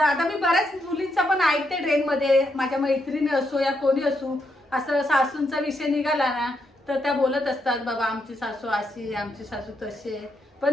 मी बऱ्याच मुलींचा पण ऐकते ट्रेनमध्ये, माझ्या मैत्रिणी असो या कोणी असो, असं सासूंचा विषय निघाला ना तर त्या बोलत असतात बाबा आमची सासू अशी, आमची सासू तशी। पण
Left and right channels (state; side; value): normal; both; correlation 0.80